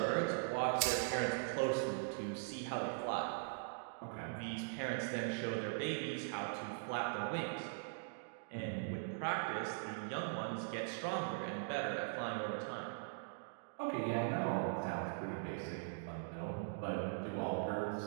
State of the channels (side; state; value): left; silent; digital silence